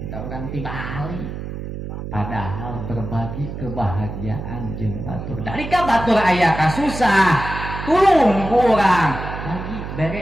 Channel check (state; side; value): noise; right; hum, 8 dB below the sound